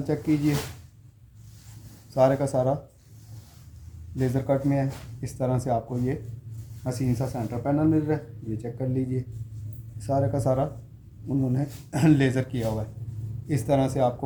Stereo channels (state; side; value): identical; both; correlation 1.00